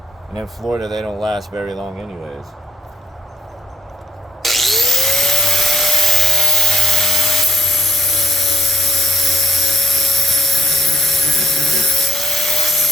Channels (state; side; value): normal; both; correlation 0.71